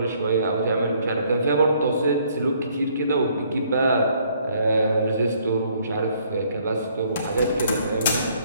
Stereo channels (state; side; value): inverted; both; correlation -0.65